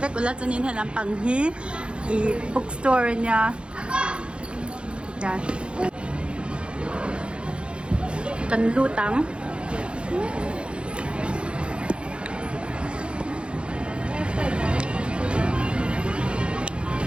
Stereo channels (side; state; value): left; late; 0.056 ms